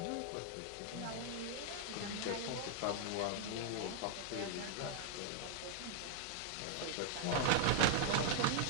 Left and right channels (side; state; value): both; different; correlation -0.01